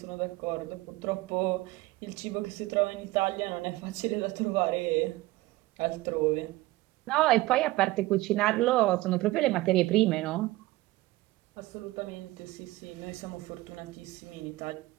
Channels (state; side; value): quieter; left; 18.9 dB